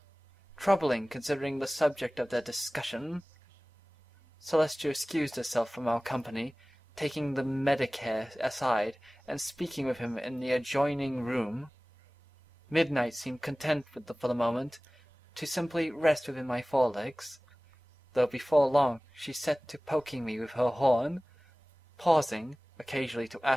Troubling, considering the subject of their discussion. Celestia excused herself from our company, taking the Medicare aside and speaking with him in the adjoining room. Midnight seemed content for the moment to simply rest within my forelegs, though before long she set to poking me with her horn, pausing occasionally to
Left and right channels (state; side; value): normal; both; correlation 0.98